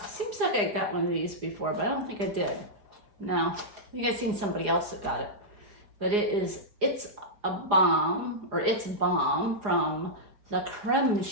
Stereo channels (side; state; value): left; late; 4.8 ms